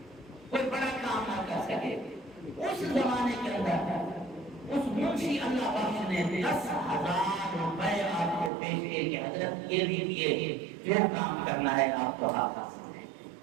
کوئی بڑا کام نہ کر سکے۔ اس زمانے کے اندر اس منشی اللہ بخش نے 10,000 روپے آپ کو پیش کیے کہ حضرت یہ لیجیے، جو کام کرنا ہے آپ کو ہاتھ سے۔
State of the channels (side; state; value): left; drops out; at 8.5 s